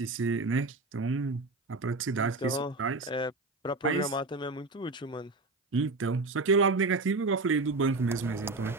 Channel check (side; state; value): left; quieter; 3.3 dB